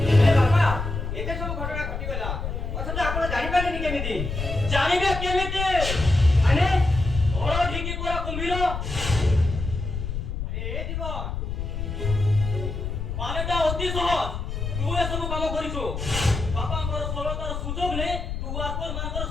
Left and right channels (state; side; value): noise; left; rumble, 4 dB below the sound